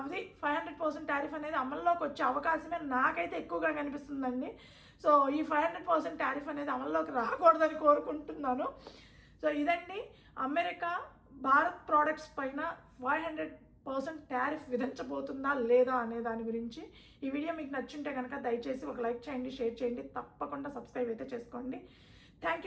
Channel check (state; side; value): identical; both; correlation 1.00